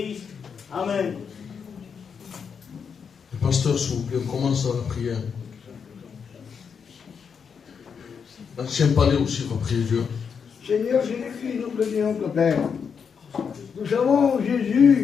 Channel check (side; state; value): right; quieter; 6.5 dB